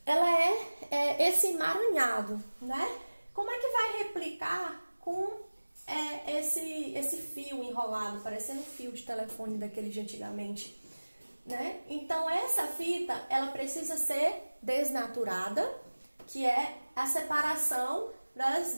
Ela é esse emaranhado, né? Como é que vai replicar com esse fio enrolado, parecendo um fio de telefone daquele de antigamente, né? Então, essa fita, ela precisa ser desnaturada, que é a separação das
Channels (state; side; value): inverted; both; correlation -1.00